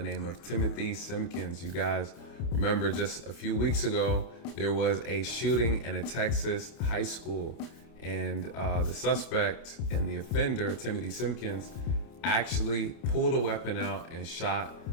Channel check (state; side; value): late; right; 29 ms